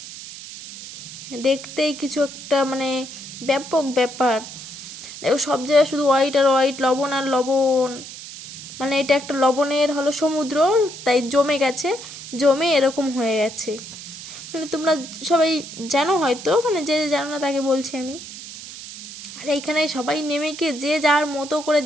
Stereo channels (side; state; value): right; noise; hiss, 12 dB below the sound